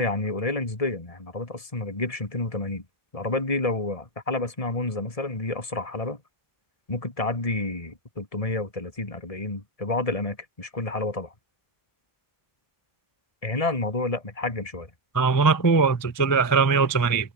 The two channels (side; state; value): right; late; 1.7 ms